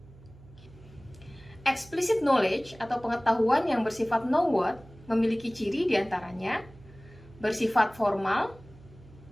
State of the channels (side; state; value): right; noise; hum, 22 dB below the sound